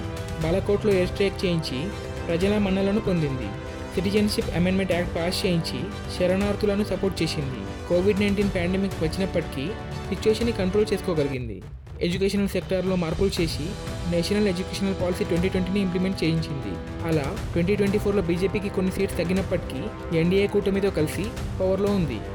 బాలాకోట్లో ఎయిర్ స్ట్రైక్ చేయించి ప్రజల మన్నలను పొందింది. సిటిజన్షిప్ అమెండ్మెంట్ యాక్ట్ పాస్ చేయించి శరణార్థులను సపోర్ట్ చేసింది. కోవిడ్-19 పాండమిక్ వచ్చినప్పటికీ సిచ్యువేషన్ని కంట్రోల్ చేసుకోగలిగింది. ఎడ్యుకేషనల్ సెక్టార్లో మార్పులు చేసి నేషనల్ ఎడ్యుకేషనల్ పాలసీ 2020ని ఇంప్లిమెంట్ చేయించింది. అలా 2024లో బీజేపీకి కొన్ని సీట్స్ తగ్గినప్పటికీ ఎన్డీఏ కూటమితో కలిసి పవర్లో ఉంది.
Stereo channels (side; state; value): both; identical; correlation 1.00